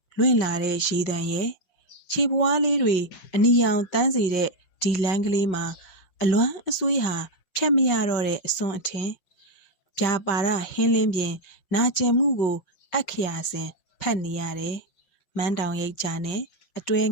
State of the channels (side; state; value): right; late; 5.6 ms